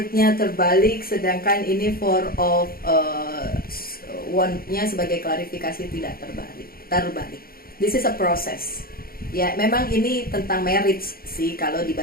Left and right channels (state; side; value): late; right; 0.43 ms